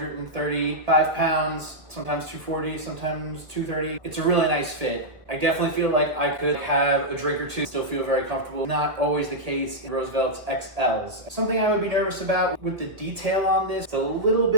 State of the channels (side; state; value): left; late; 1.7 ms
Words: pounds, sometimes 240, sometimes 230. It's a really nice fit. I definitely feel like I could have a drink or two, still feel very comfortable. Not always the case in Roosevelt's XLs. Something I would be nervous about with the detail on this, it's a little